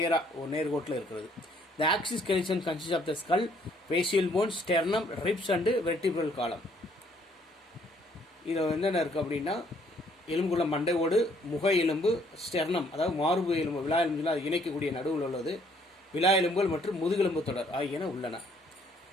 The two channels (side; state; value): both; normal; correlation 0.64